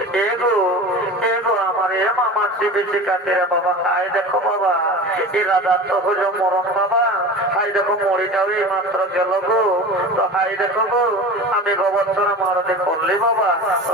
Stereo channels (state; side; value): normal; both; correlation 0.33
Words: এগো এগো আমার এ মামার বেশি কাছে বাবা। হাই দেখো বাবা, এই রাজার তো হইল মরণ বাবা। হাই দেখো মরিটাও এই মাত্র গেল গো। তো হাই দেখো গো, আমি গোবর্ধনা মারতে করলি বাবা। তো